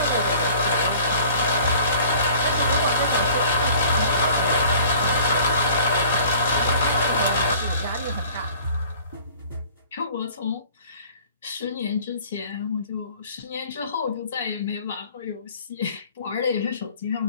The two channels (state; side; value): inverted; both; correlation -0.50